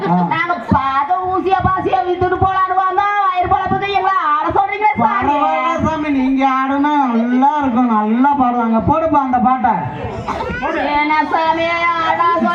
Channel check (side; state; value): both; identical; correlation 1.00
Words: நாங்க பார்த்த ஊசியா பாசியா வித்துட்டு போலான்னு வந்தோம். வயிறு பழப்புக்கு எங்களை ஆட சொல்றீங்க சாமி. பரவாயில்ல சாமி, நீங்க ஆடுனா நல்லா இருக்கும், நல்லா பாடுவாங்க. போடுப்பா அந்த பாட்டை. என்ன சாமி ஆடா